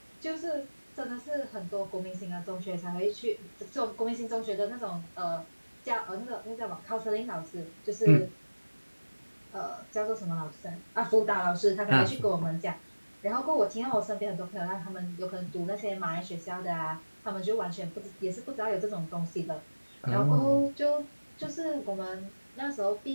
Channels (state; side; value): inverted; both; correlation -1.00